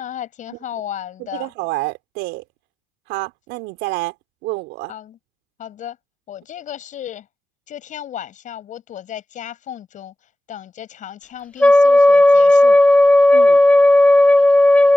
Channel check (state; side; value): normal; both; correlation 0.93